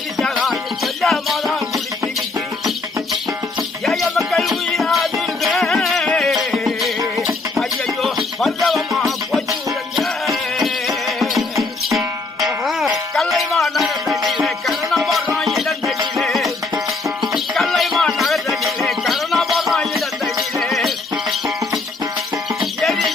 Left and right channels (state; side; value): quieter; right; 3.6 dB